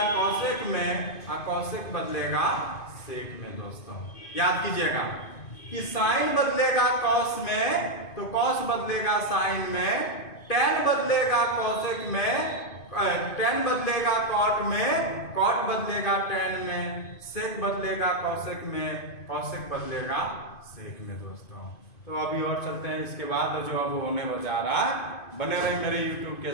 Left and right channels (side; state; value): right; late; 2.5 ms